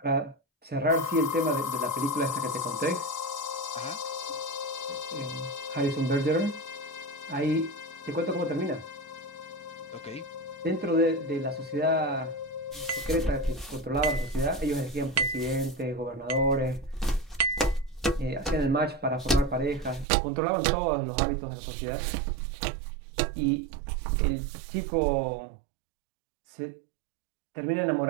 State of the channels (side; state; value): left; drops out; at 20.1 s